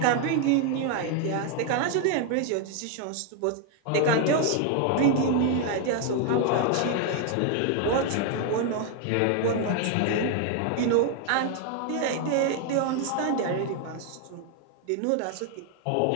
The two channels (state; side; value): different; both; correlation 0.00